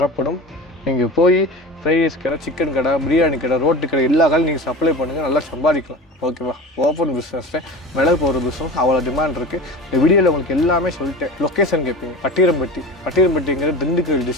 நீங்கள் போய் ஃப்ரைட் ரைஸ் கடை, சிக்கன் கடை, பிரியாணி கடை, ரோட்டு கடை எல்லா கடையும் நீங்கள் சப்ளை பண்ணுங்கள். நல்லா சம்பாதிக்கலாம். ஓகேவா? ஓப்பன் பிஸ்னஸில் மிளகு போடுற பிஸ்னஸ் அவ்வளோ டிமாண்ட் இருக்குது. இந்த வீடியோவில் உங்களுக்கு எல்லாமே சொல்லிட்டேன். லொக்கேஷன் கேட்பீங்க. பட்டிரம்பட்டிங்கிறது திண்டுக்கல்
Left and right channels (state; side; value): normal; both; correlation 0.33